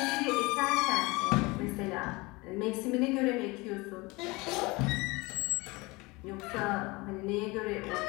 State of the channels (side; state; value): right; quieter; 24.0 dB